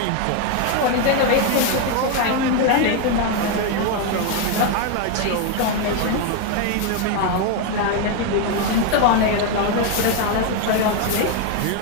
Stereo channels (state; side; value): different; both; correlation 0.01